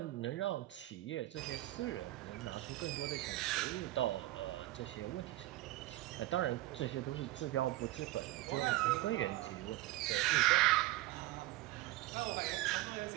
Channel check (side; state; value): left; quieter; 17.2 dB